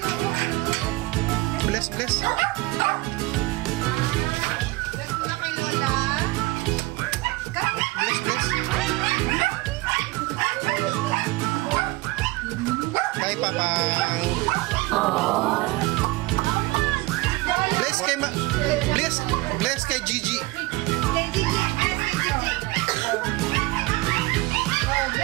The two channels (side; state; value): left; quieter; 21.0 dB